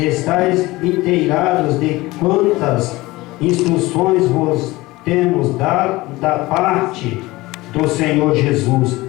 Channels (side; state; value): right; quieter; 20.0 dB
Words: inteirados de quantas instruções vos temos dado da parte do Senhor Jesus,